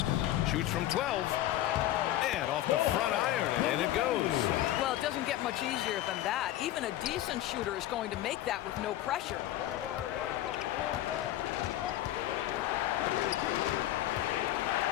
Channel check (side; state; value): right; quieter; 13.8 dB